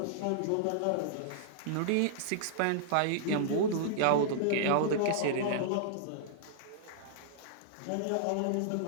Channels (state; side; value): different; both; correlation -0.01